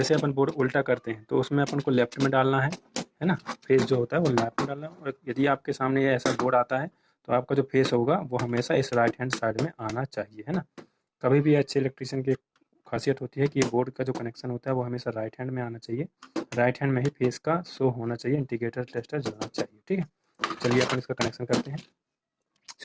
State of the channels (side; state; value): both; identical; correlation 1.00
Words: अपन बोर्ड उल्टा करते हैं तो उसमें अपन को लेफ्ट में डालना है ना। फेस जो होता है वो लेफ्ट में डालना है, और यदि आपके सामने ये ऐसा बोर्ड आता है तो आपका जो फेस होगा वो हमेशा इस राइट हैंड साइड में आना चाहिए, है ना। कभी भी अच्छे इलेक्ट्रीशियन की खासियत होती है कि बोर्ड का जो कनेक्शन होता है वो हमेशा राइट हैंड में आना चाहिए। राइट हैंड में ही फेस का शो होना चाहिए, इंडिकेटर टेस्टर जलना चाहिए, ठीक है। चलिए अपन इसका कनेक्शन करते हैं